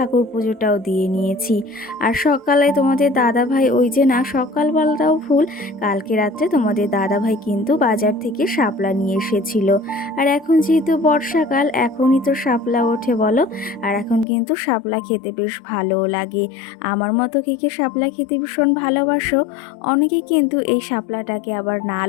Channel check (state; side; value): drops out; right; at 14.2 s